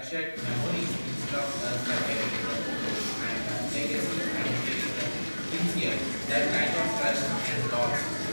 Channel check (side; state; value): both; inverted; correlation -1.00